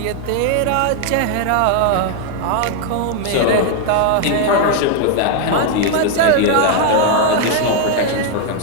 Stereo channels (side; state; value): both; different; correlation 0.00